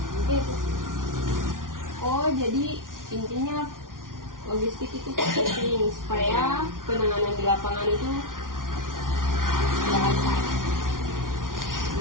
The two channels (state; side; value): late; left; 0.89 ms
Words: Mungkin itu. Oh, jadi intinya logistik itu penting supaya penanganan di lapangan itu lancar.